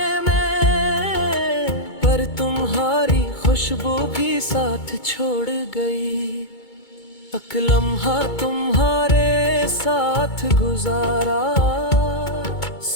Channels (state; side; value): late; right; 2.2 ms